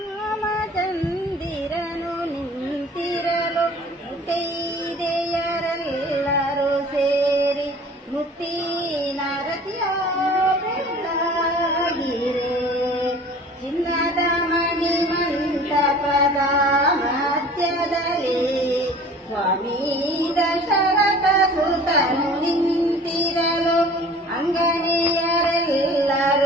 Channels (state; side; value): normal; both; correlation 0.46